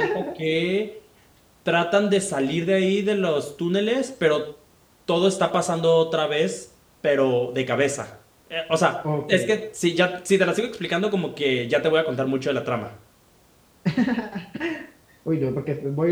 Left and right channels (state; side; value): identical; both; correlation 1.00